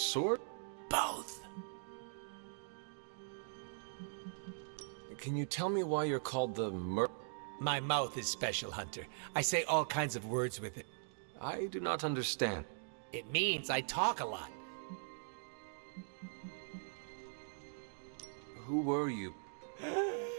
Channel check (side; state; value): left; silent; digital silence